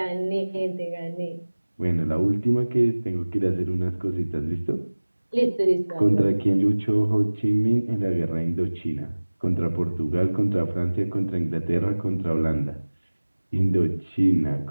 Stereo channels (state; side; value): inverted; both; correlation -1.00